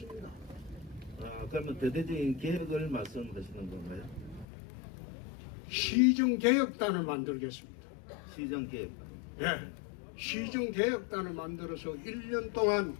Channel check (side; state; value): right; drops out; at 4.5 s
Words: 그러면 대대적인 계획을 말씀하시는 건가요? 시정개혁단을 만들겠습니다. 시정 계획. 예, 시정개혁단을 만들어서 1년 동안